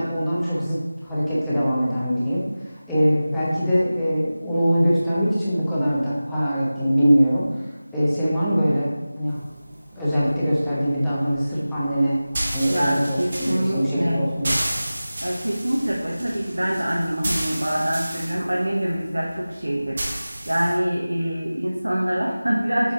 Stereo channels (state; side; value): inverted; both; correlation -0.97